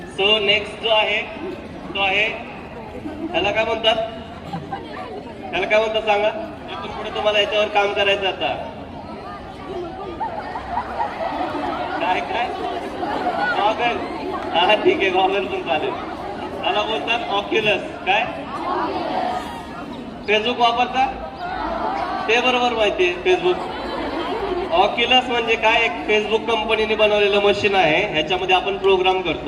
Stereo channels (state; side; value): identical; both; correlation 1.00